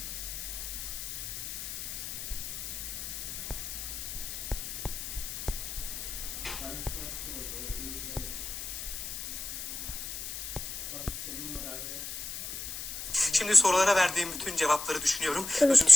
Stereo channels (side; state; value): left; noise; hiss, 6 dB below the sound